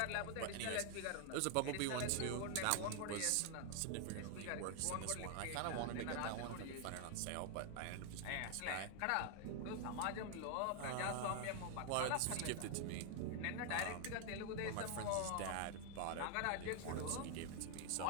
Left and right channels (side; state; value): both; different; correlation 0.00